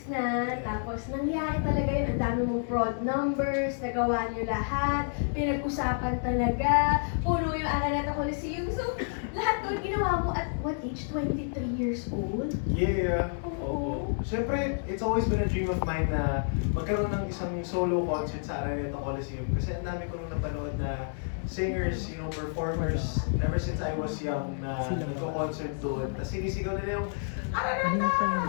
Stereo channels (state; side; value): silent; right; digital silence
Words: na, tapos nangyari talaga yun, ang dami mong fraud numbers, nagawa niyo lahat, pinag-usapan talaga, puno yung Araneta Coliseum. So, lahat doon ginawa mo at what age? 23 years old? Yeah. Oo. Siyempre, it's always been a dream of mine na magkaroon ng isang solo concert sa Araneta Coliseum. Kasi ang dami ko nung napanood na singers, performers, ever since I was young na nagko-concert doon. Tapos sinisigaw nila yung